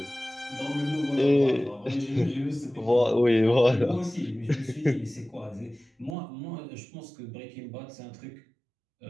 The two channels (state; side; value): drops out; left; at 6.2 s